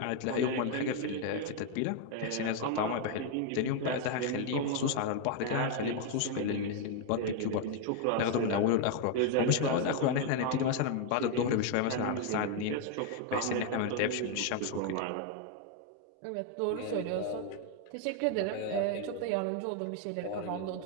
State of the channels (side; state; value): both; different; correlation 0.01